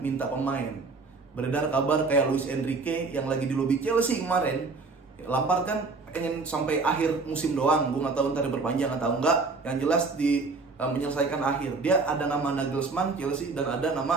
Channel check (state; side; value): quieter; left; 4.0 dB